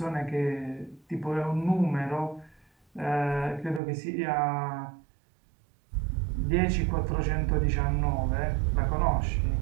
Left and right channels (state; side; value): drops out; left; at 3.8 s